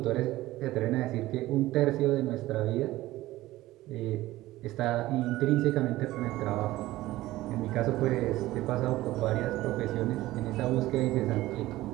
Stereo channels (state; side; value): quieter; left; 16.9 dB